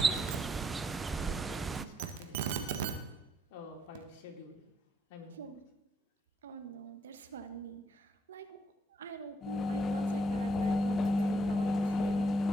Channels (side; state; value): both; normal; correlation 0.75